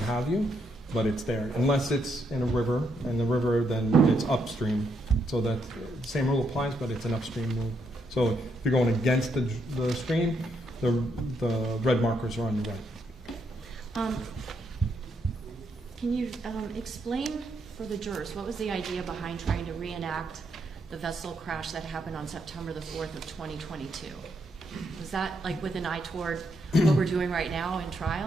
have you, but it's there. Unless it's in a river, and the river then it's upstream. So that same rule applies, but it's an upstream rule. So if you're going against the stream, the red markers are on your right. Can you explain for the jurors, what was the idea behind trying to reenact the vessel crash that happened on September the 4th of 2022? Was that like with an eye toward what we're doing right now in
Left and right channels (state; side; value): normal; both; correlation 0.77